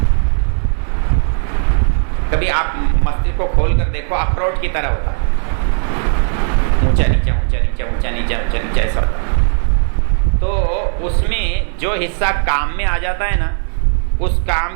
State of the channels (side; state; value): left; silent; digital silence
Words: कभी आप मस्तिष्क को खोल कर देखो, अखरोट की तरह होता है, ऊंचा नीचा ऊंचा नीचा ऊंचा नीचा ऊंचा नीचा ऐसा होता है। तो उसमें जो हिस्सा काम में आ जाता है ना, उस